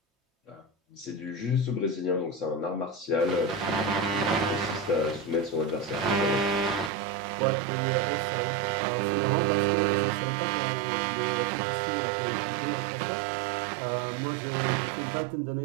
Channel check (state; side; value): drops out; left; at 6.9 s